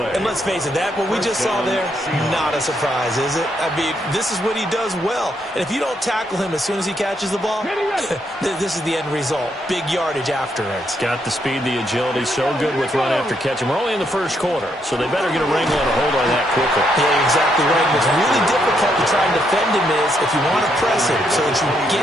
And let's face it, that what we just saw there, not a surprise, is it? I mean, this is what he does well. And if you don't tackle him as soon as he catches the ball, this is the end result. Big yardage afterwards. Got the speed, the agility, so good with run after catch. And we're only in the first quarter, so they better get a wrangle and a hold on that quickly. Yeah, you're exactly right. What's really difficult to try and defend him is if you want to press him so that you get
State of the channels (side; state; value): both; normal; correlation 0.76